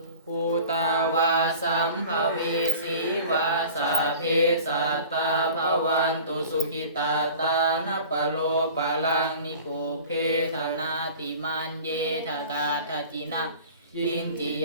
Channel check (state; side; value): inverted; both; correlation -0.41